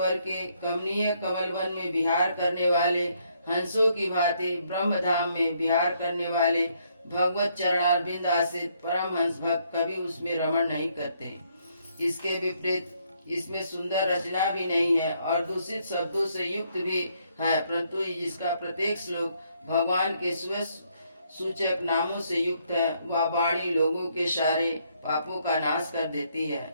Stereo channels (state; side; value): inverted; both; correlation -0.71